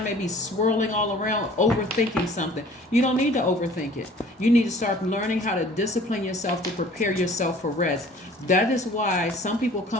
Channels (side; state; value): both; normal; correlation 0.50